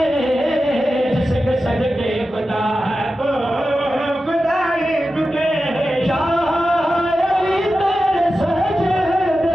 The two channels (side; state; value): both; normal; correlation 0.92